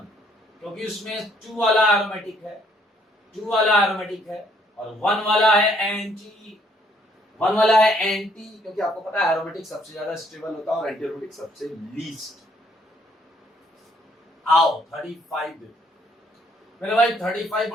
क्योंकि उसमें 2 वाला एरोमेटिक है, 2 वाला एरोमेटिक है, और 1 वाला है एंटी, 1 वाला है एंटी, क्योंकि आपको पता है एरोमेटिक सबसे ज्यादा स्टेबल होता है और एंटी एरोमेटिक सबसे लीस्ट। आओ 35 मेरे भाई, 35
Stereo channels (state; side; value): normal; both; correlation 0.66